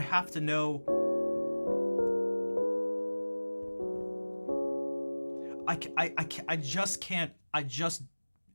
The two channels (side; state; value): both; inverted; correlation -1.00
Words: to know, I just can't,